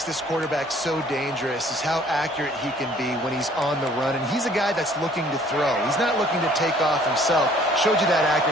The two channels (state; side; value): normal; both; correlation 0.57